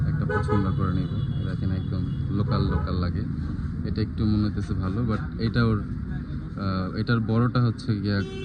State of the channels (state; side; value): identical; both; correlation 1.00